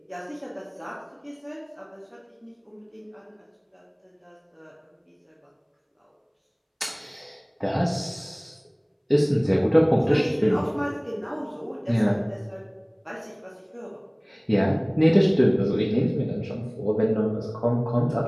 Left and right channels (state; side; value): identical; both; correlation 1.00